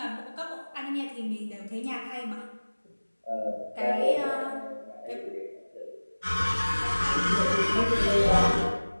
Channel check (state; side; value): inverted; both; correlation -1.00